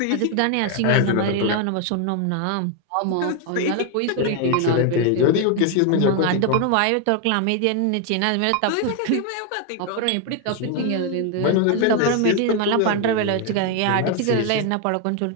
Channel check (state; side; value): different; both; correlation 0.01